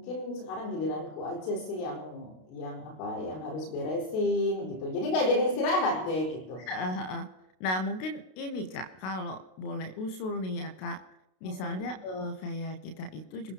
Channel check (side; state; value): right; late; 32 ms